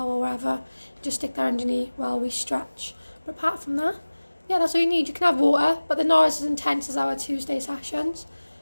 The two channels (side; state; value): both; inverted; correlation -1.00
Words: or whatever, just stick that underneath while we stretch. But apart from that, yeah, that's all you need. You can have water, but they're not as intense as our Tuesday sessions.